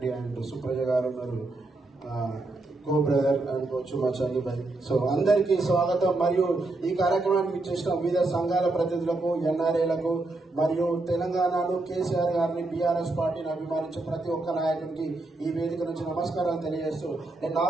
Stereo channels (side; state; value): left; quieter; 3.0 dB